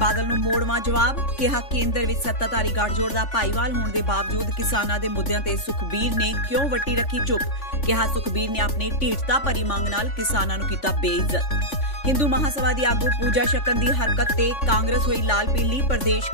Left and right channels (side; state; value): right; late; 5.7 ms